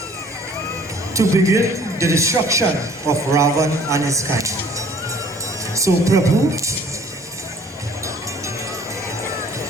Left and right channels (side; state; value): both; normal; correlation 0.54